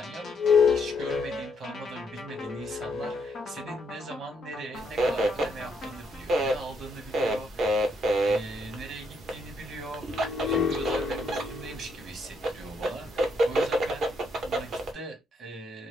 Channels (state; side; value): normal; both; correlation 0.74